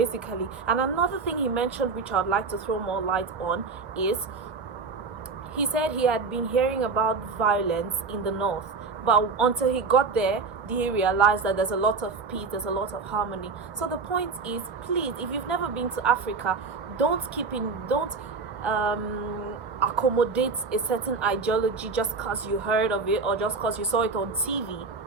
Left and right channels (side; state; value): left; quieter; 4.5 dB